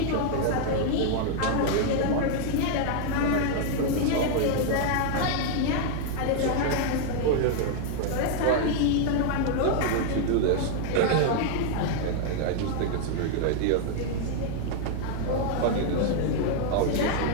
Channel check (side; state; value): both; different; correlation 0.00